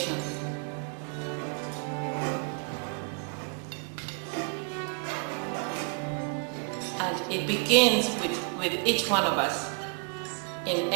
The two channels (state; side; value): quieter; left; 37.0 dB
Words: and it begins with each one of us. In